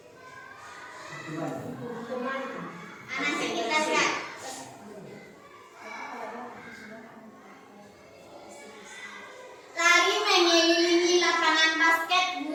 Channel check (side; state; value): both; identical; correlation 1.00